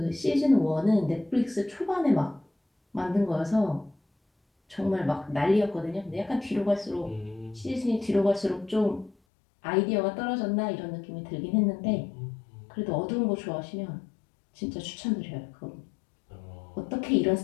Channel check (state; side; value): drops out; right; at 9.2 s